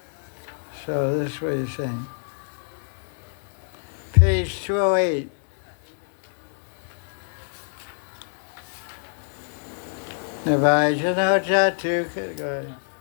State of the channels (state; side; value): silent; right; 61 dB below the other